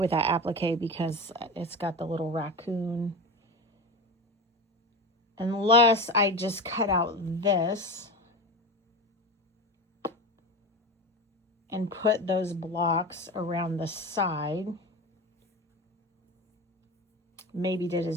with that applique because it's got the little raccoon. Unless I just cut out this and put those blocks around the side. Maybe did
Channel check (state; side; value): normal; both; correlation 0.26